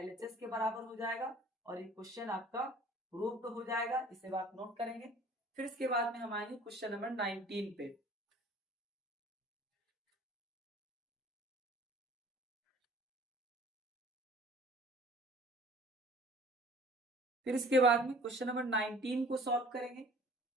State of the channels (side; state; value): both; normal; correlation 0.50